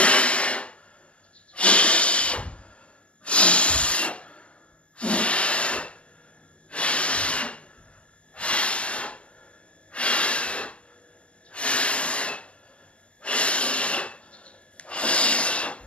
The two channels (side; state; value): right; late; 0.055 ms